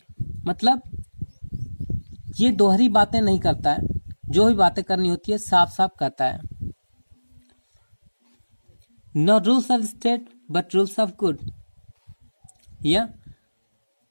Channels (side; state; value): both; inverted; correlation -1.00